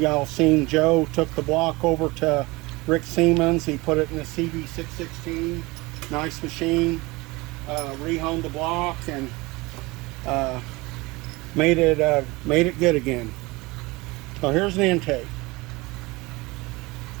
all seen Joe took the block over to Rick Siemens. He put it in a CB616, nice machine. Rehoned the block and made it good again. So here's an intake.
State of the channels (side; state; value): left; quieter; 23.2 dB